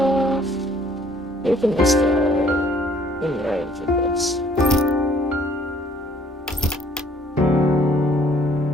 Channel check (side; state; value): both; normal; correlation 0.59